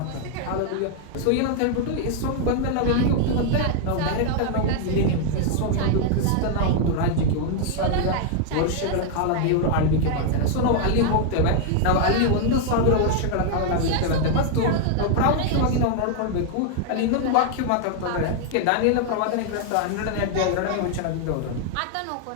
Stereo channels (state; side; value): different; both; correlation 0.00